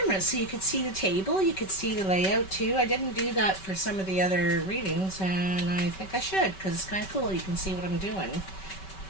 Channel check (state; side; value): late; right; 5.2 ms